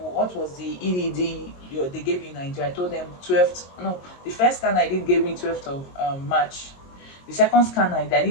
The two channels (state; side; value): late; right; 22 ms